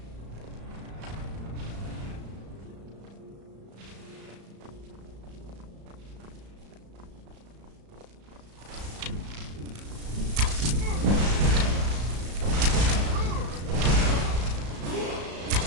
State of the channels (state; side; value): late; left; 35 ms